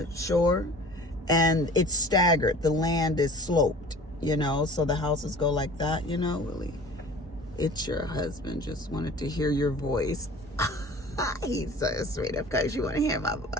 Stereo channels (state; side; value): normal; both; correlation 0.44